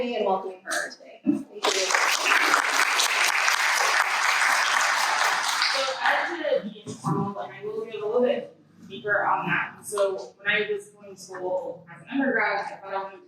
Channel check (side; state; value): both; identical; correlation 1.00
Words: in welcoming her today. Thank you. So I had to be informal, and I will get a little bit deeper on that. So when I was going to school as an undergrad, I thought I wanted